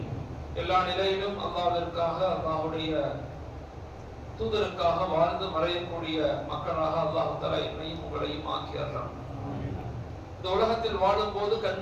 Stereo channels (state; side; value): identical; both; correlation 1.00